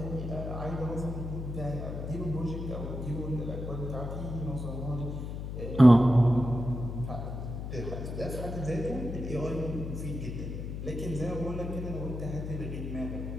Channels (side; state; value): left; noise; hum, 6 dB below the sound